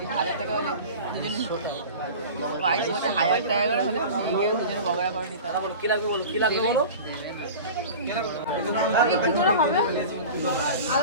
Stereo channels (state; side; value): inverted; both; correlation -0.35